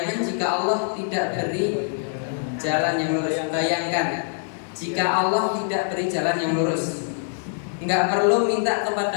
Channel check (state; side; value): silent; right; digital silence